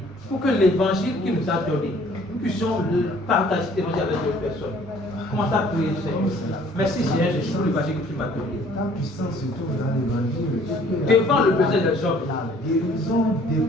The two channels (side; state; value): both; normal; correlation 0.56